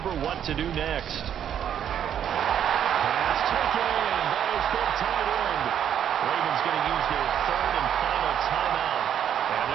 what to do next. pass taken in by his big tight end. Ravens going to use their third and final timeout. And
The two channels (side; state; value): left; quieter; 9.4 dB